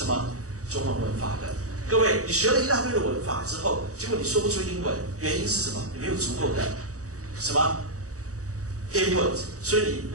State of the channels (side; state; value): left; late; 0.66 ms